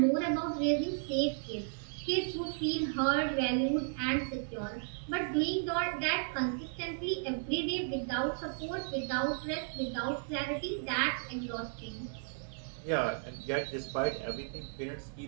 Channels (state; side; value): silent; left; digital silence